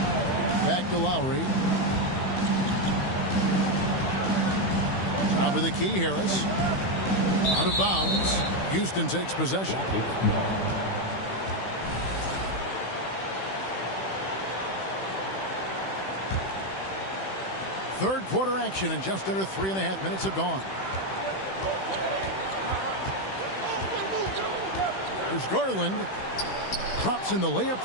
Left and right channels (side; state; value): right; late; 16 ms